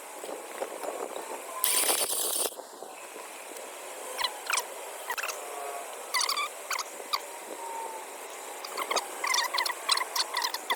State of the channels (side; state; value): both; identical; correlation 1.00